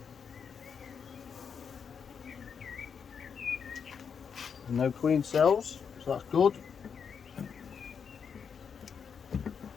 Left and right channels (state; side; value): quieter; right; 6.7 dB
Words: No queen cells, so that's good.